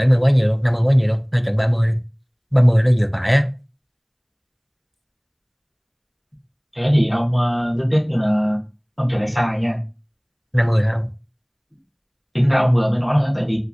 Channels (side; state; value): both; identical; correlation 1.00